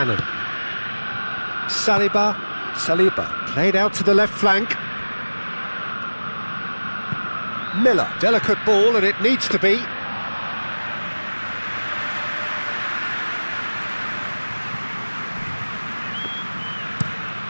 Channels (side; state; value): both; inverted; correlation -1.00